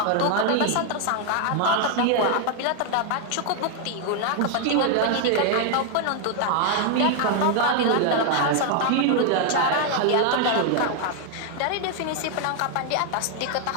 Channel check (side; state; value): both; different; correlation 0.00